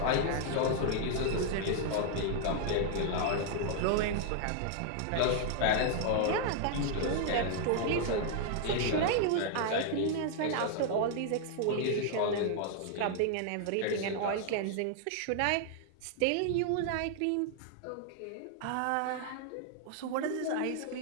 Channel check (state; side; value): different; both; correlation 0.00